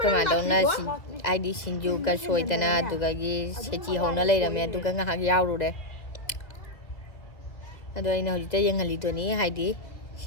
cái mà đâu na ai đi xin du cái soi tên na tụi cái gì sẽ chỉ hậu nó lấy làm nè tụi cái ngã dâu rồi đấy. Rồi này hồi tới dân hành lý tụi ní hay đi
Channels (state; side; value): late; right; 1.8 ms